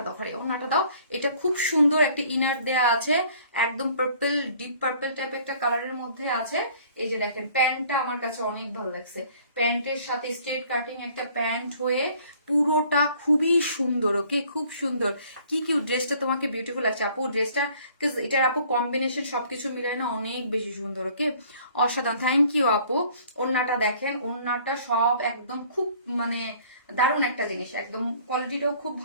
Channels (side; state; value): both; inverted; correlation -0.56